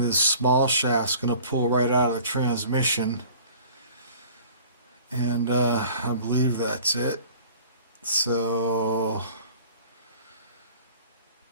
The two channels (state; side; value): inverted; both; correlation -0.48